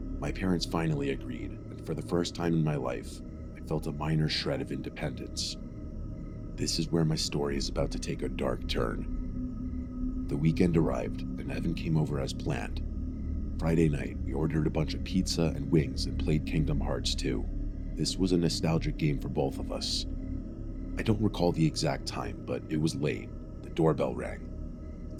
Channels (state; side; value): identical; both; correlation 1.00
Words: My parents finally agreed, and for the first time in my life, I felt a minor shred of independence. This is where my story is about to take a dark turn. The weekend arrived, and Evan came over as planned. Friday night, we ordered a bunch of pizza and wings and played Kingdom Hearts 2. This was a nostalgic game for both of us. I don't recall the exact time, but it was late. The doorbell rang. It